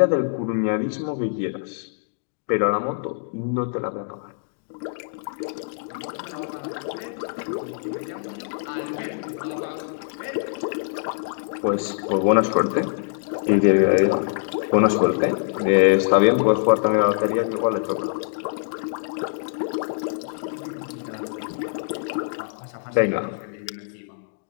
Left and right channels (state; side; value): silent; right; digital silence